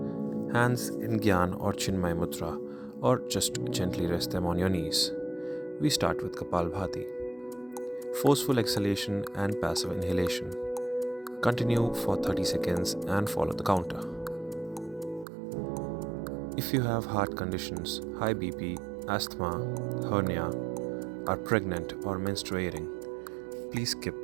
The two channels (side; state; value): left; drops out; at 15.2 s